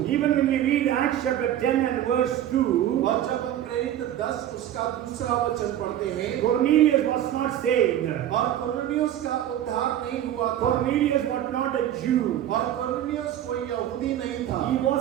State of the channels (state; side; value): quieter; left; 11.6 dB